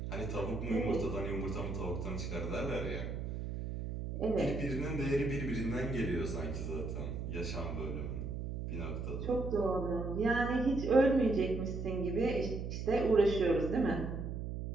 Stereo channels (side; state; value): right; noise; hum, 5 dB below the sound